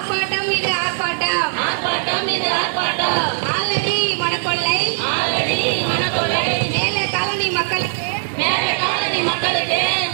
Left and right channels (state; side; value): silent; left; digital silence